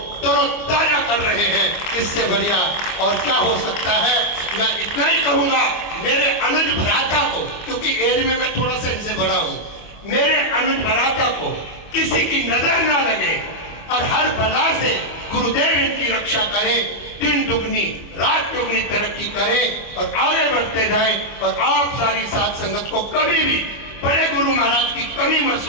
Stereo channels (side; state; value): right; late; 25 ms